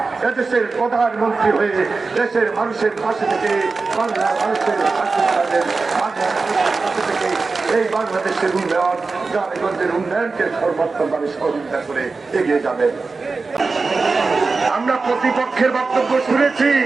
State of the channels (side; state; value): left; quieter; 4.1 dB